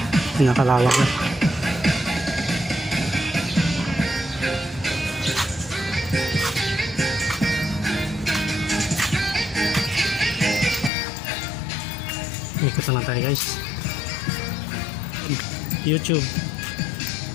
Nakalawak na. Ikot na lang tayo guys. YouTube.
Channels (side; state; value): right; drops out; at 10.9 s